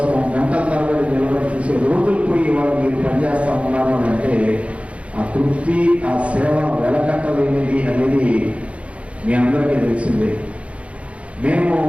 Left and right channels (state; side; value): late; left; 0.063 ms